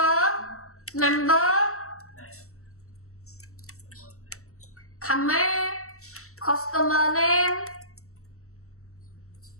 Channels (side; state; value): right; late; 0.64 ms